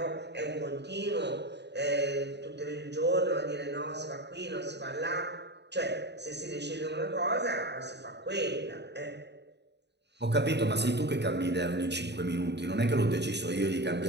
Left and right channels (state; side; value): late; left; 0.50 ms